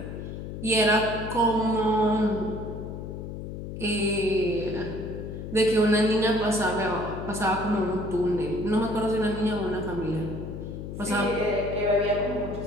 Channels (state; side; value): noise; left; hum, 8 dB below the sound